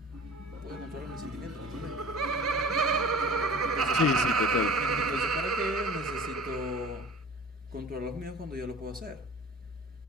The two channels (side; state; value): both; normal; correlation 0.42